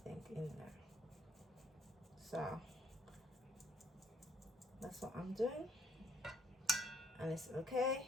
in there. So that's what I'm doing, and it's okay,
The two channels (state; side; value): normal; both; correlation 0.68